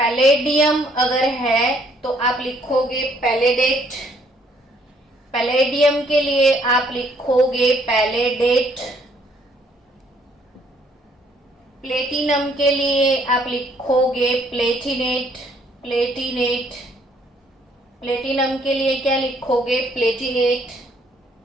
अगर है तो आप लिखोगे पैलेडेट। पैलेडियम के लिए आप लिखोगे पैलेडेट। प्लेटिनम के लिए आप लिखोगे प्लेटिनेट, प्लेटिनेट। प्लेटिनम के लिए क्या लिखोगे, प्लेटिनेट।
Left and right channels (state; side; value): normal; both; correlation 0.66